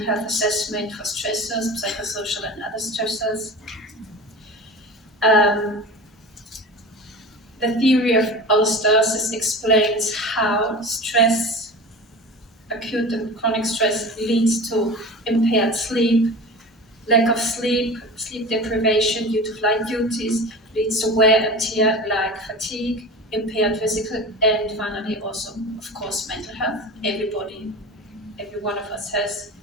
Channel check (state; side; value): normal; both; correlation 0.33